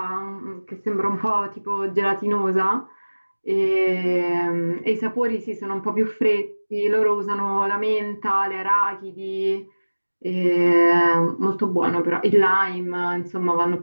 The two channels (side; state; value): both; inverted; correlation -1.00